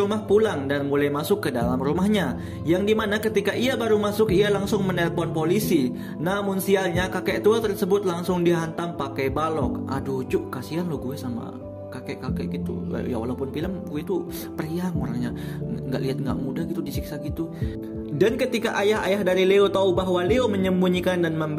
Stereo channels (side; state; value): both; identical; correlation 1.00